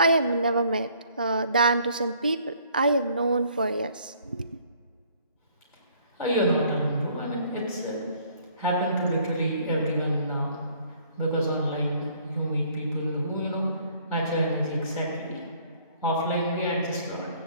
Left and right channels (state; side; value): inverted; both; correlation -0.60